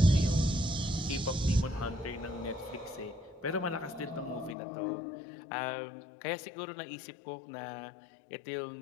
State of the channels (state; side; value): drops out; right; at 4.5 s